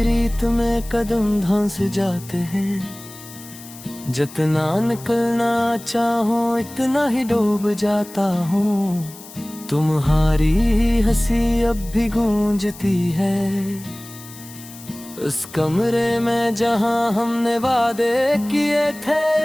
रीत में कदम धंस जाते हैं, जितना निकलना चाहो इतना ही डूब जाता हूँ। तुम्हारी हंसी अब भी गूंजती है उस कमरे में जहां हमने वादे किए थे।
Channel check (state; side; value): noise; left; hiss, 17 dB below the sound